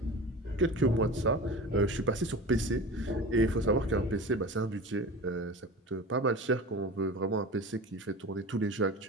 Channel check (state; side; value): normal; both; correlation 0.34